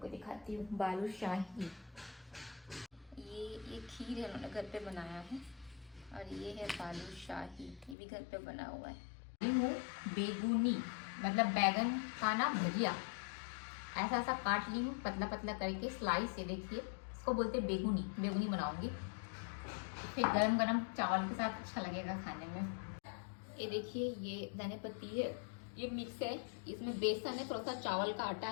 को दिखाती हूँ। बालूशाही, ये खीर है, उन्होंने घर पे बनाया है। और ये है बालूशाही, ये भी घर पे बना हुआ है। बेगुनी मतलब बैगन का ना भजिया, ऐसा ऐसा काट ली हूँ पतला पतला करके स्लाइस। ये देखिए, इसको बोलते हैं बेगुनी। बेगुनी बनाऊंगी, फिर गरम गरम चावल के साथ अच्छा लगेगा खाने में। ये देखिए, ये धनिया पत्ती है, ये मिक्स है, इसमें बेसन है, थोड़ा सा चावल का आटा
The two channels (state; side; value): drops out; right; at 8.0 s